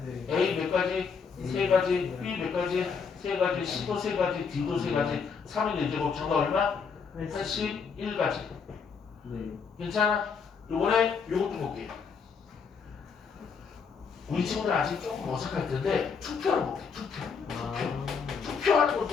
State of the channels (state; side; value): quieter; right; 5.8 dB